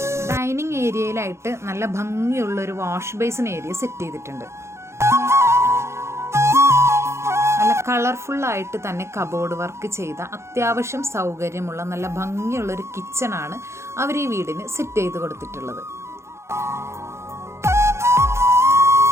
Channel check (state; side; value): late; left; 0.13 ms